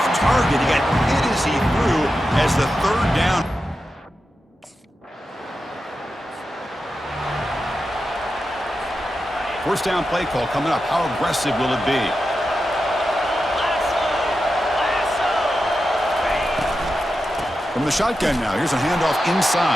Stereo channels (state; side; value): normal; both; correlation 0.90